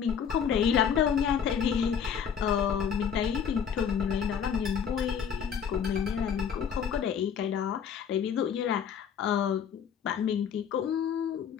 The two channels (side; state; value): right; quieter; 7.6 dB